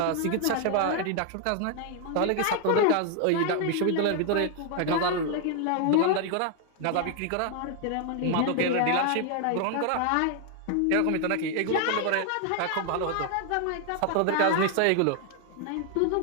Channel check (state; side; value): different; both; correlation 0.00